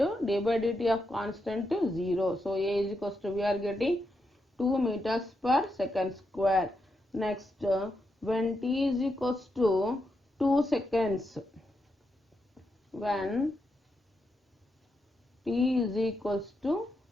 by dt of constant 0. So a is equals to, we are getting 2 meters per second square. Next, when t is equals to 2 seconds, when t is equals to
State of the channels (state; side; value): normal; both; correlation 0.84